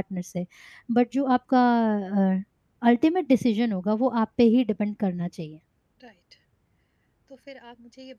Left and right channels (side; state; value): both; identical; correlation 1.00